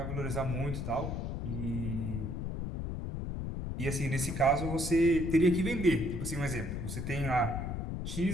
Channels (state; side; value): noise; left; rumble, 4 dB below the sound